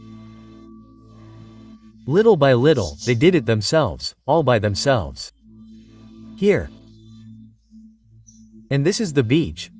Little by little, they did it themselves, all by themselves. Here. And this is the beach,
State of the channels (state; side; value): identical; both; correlation 1.00